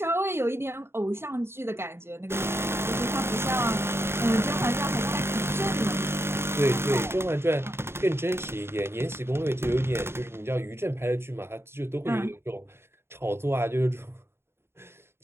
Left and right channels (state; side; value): late; left; 0.12 ms